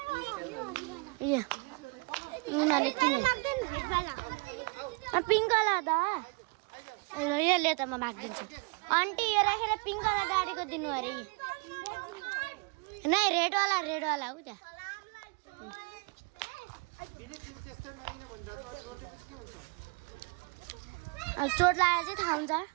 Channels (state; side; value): quieter; left; 31.0 dB